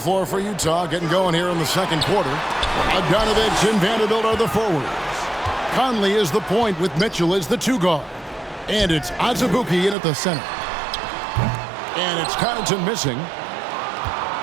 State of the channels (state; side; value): drops out; left; at 10.0 s